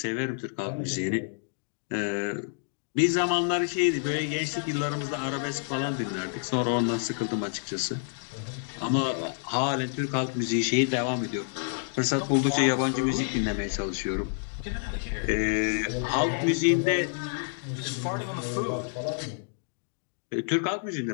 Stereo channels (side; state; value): right; silent; digital silence